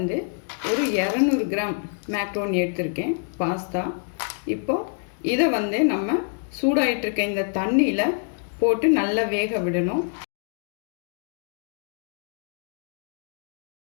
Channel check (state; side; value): silent; right; 58 dB below the other